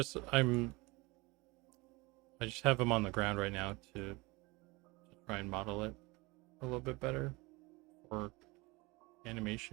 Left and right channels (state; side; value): quieter; left; 24.3 dB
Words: I just have him on the ground right now to try and model it a little bit better for